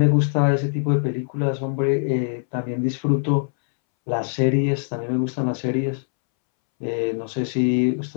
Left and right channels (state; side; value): silent; right; 64 dB below the other